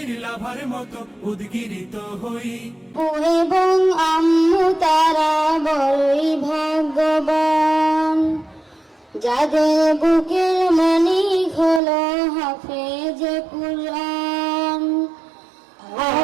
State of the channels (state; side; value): drops out; left; at 11.8 s